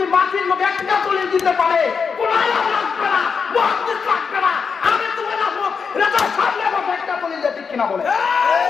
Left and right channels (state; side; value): quieter; right; 5.7 dB